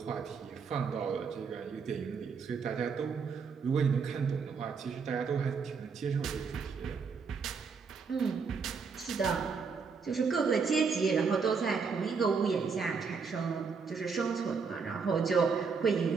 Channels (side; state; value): left; quieter; 5.4 dB